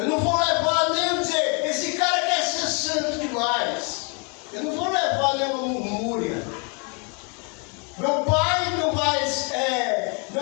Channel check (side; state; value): right; quieter; 35.5 dB